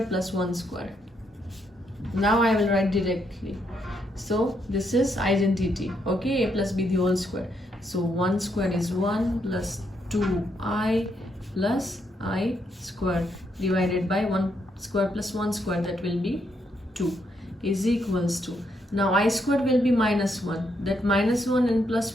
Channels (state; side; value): normal; both; correlation 0.77